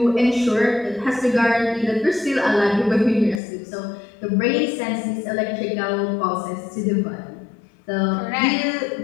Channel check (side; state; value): right; drops out; at 3.4 s